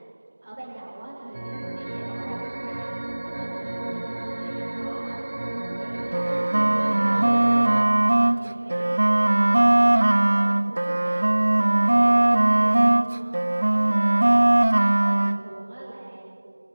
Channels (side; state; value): both; inverted; correlation -1.00